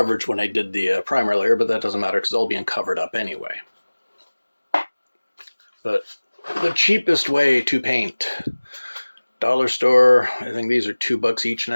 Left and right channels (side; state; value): both; inverted; correlation -1.00